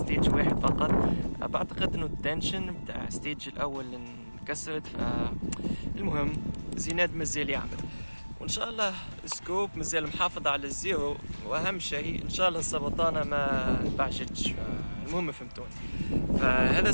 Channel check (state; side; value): inverted; both; correlation -1.00